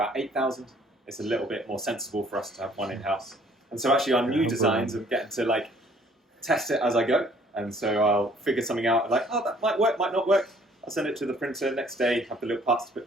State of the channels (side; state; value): both; normal; correlation 0.58